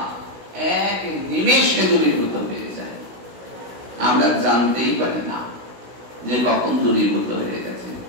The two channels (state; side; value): late; left; 16 ms